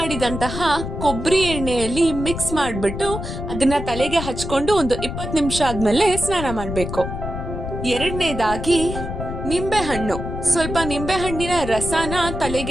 ಕೊಬ್ಬರಿ ಎಣ್ಣೆಯಲ್ಲಿ ಮಿಕ್ಸ್ ಮಾಡಿಬಿಟ್ಟು ಅದನ್ನ ತಲೆಗೆ ಹಚ್ಕೊಂಡು ಒಂದು 20 ನಿಮಿಷ ಆದ್ಮೇಲೆ ಸ್ನಾನ ಮಾಡಬೇಕು. ಎರಡನೇದಾಗಿ ಸ್ವಲ್ಪ ನಿಂಬೆಹಣ್ಣಿನ ರಸನ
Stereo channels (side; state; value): left; noise; rumble, 6 dB below the sound